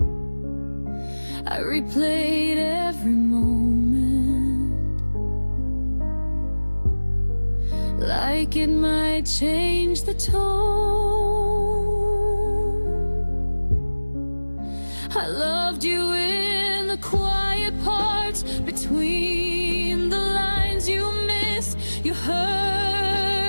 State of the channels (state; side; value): inverted; both; correlation -1.00